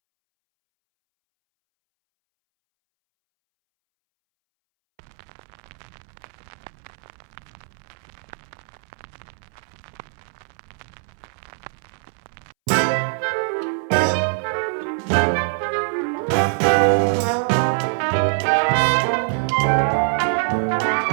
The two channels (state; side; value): silent; left; 63 dB below the other